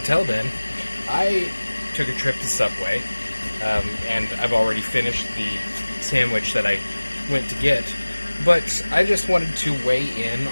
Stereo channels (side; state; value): both; inverted; correlation -1.00